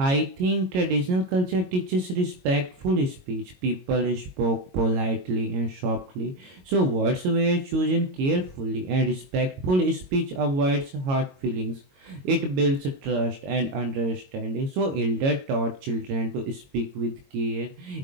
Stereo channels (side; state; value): left; late; 22 ms